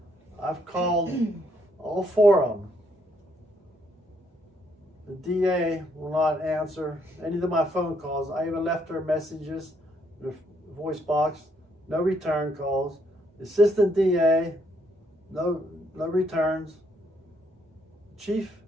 I've called all 4 of them. The DA will not answer any of my phone calls. I even left her messages, the voice box, no return calls. The assistant DA, no returns. Chief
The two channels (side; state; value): both; normal; correlation 0.72